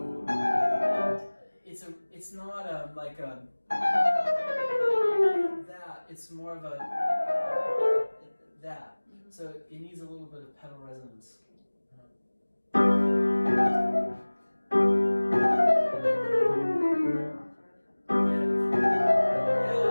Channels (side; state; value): both; inverted; correlation -1.00